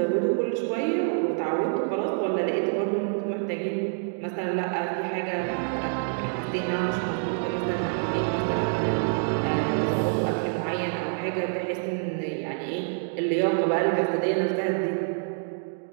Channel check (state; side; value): silent; left; digital silence